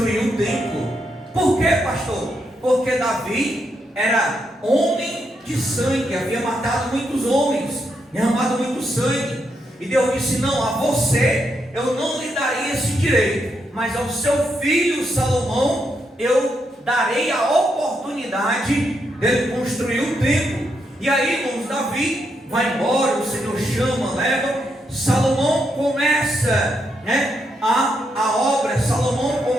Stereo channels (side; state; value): both; normal; correlation 0.80